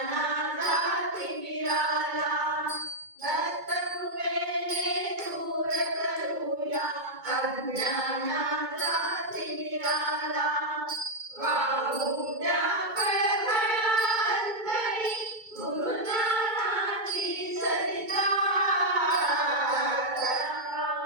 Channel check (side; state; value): left; late; 2.2 ms